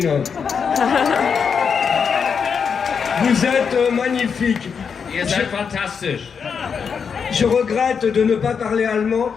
Vous êtes magnifique. Ihr seid fantastisch. Je regrette de ne pas parler allemand,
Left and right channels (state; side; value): quieter; right; 6.3 dB